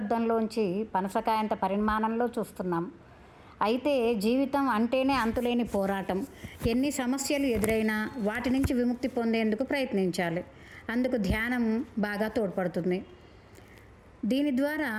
పనసకాయంత పరిమాణంలో చూస్తున్నాం. అయితే జీవితం అంటేనే అంతులేని పోరాటం. ఎన్ని సమస్యలు ఎదురైనా వాటి నుంచి విముక్తి పొందేందుకు ప్రయత్నించాలి. అందుకు ధ్యానం బాగా తోడ్పడుతుంది. దీని ద్వారా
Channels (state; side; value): identical; both; correlation 1.00